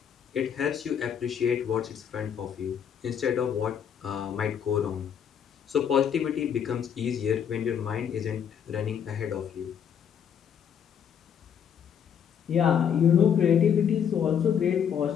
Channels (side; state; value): right; quieter; 8.2 dB